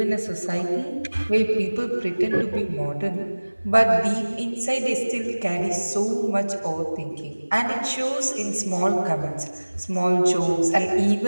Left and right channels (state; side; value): inverted; both; correlation -1.00